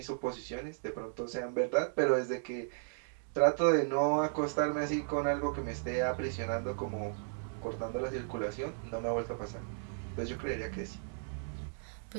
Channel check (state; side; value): silent; left; digital silence